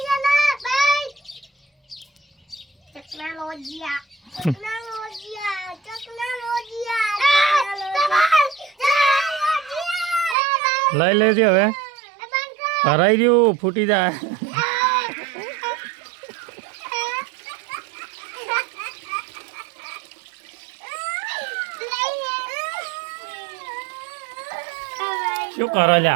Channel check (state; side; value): drops out; left; at 10.4 s